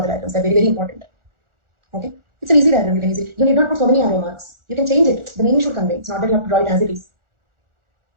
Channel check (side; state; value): left; late; 1.4 ms